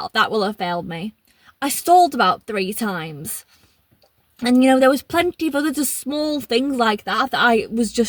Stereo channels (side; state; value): both; identical; correlation 1.00